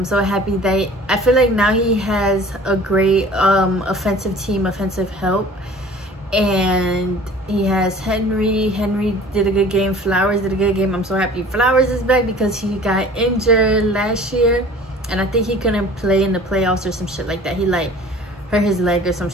so happy that I feel like now he has a great offensive team, offensive help. And he has Henry did a good game. Flowers did a good game. I'm so happy Flowers is back because he got injured last year, and I think he couldn't play in the playoffs or some shit like that. He like hurt his leg or some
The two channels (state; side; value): normal; both; correlation 0.46